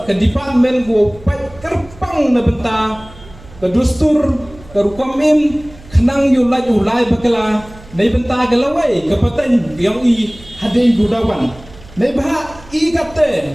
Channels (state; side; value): noise; right; hum, 21 dB below the sound